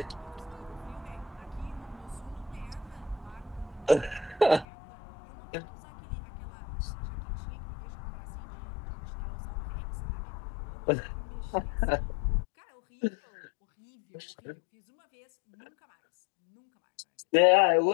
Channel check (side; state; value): right; drops out; at 4.7 s